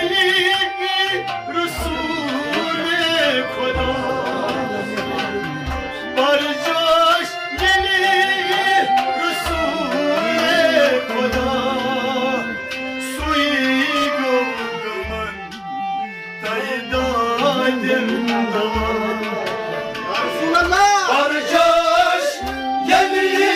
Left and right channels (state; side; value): identical; both; correlation 1.00